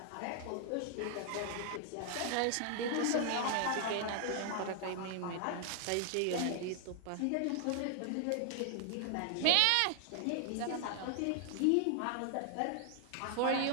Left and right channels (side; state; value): both; different; correlation 0.00